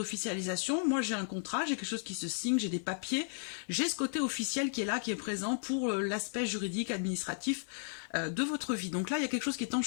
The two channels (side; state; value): right; silent; digital silence